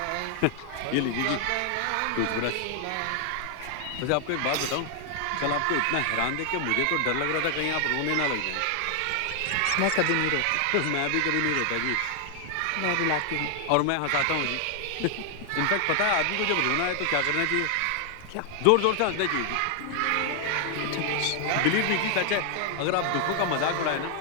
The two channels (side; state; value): both; different; correlation 0.00